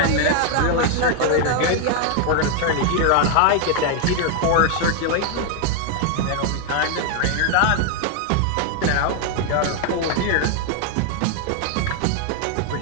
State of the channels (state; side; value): different; both; correlation 0.00